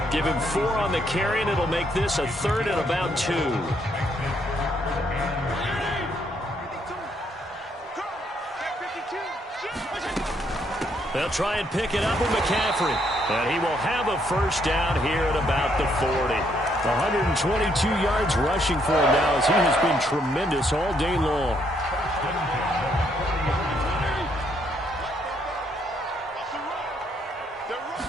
Give him 4 on the carry, and it'll make this a 3rd and about 2. They'll try and pick it up with McCaffrey. And he will have a 1st down here at about the 40. 122 yards rushing for him now as he has been tremendous all day long.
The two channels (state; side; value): normal; both; correlation 0.72